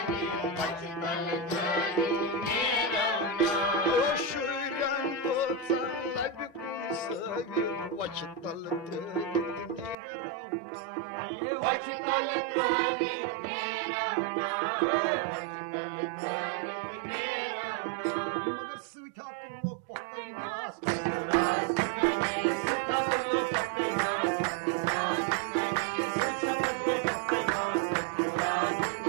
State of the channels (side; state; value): left; drops out; at 10.0 s